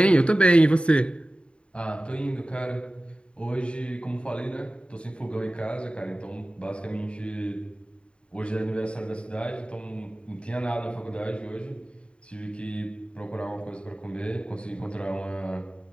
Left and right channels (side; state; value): right; late; 0.056 ms